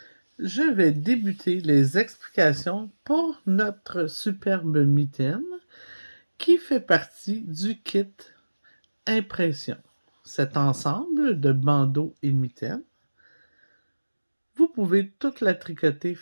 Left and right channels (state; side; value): inverted; both; correlation -1.00